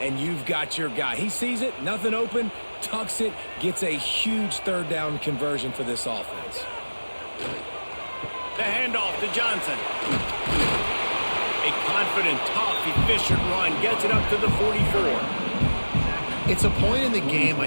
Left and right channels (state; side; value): inverted; both; correlation -1.00